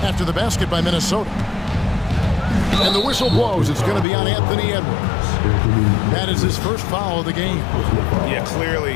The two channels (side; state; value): right; drops out; at 4.0 s